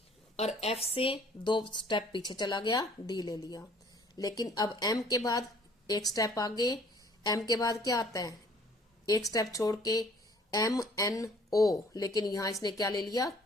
और एफ से 2 स्टेप पीछे चला गया, डी ले लिया। लेकिन अब एम के बाद 1 स्टेप आगे, एम के बाद क्या आता है 1 स्टेप छोड़ के एम एन ओ, लेकिन यहां इसने क्या ले लिया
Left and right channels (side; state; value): both; normal; correlation 0.56